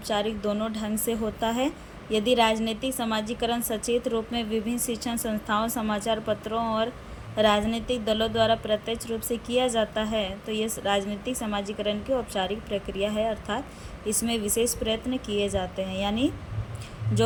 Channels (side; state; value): both; identical; correlation 1.00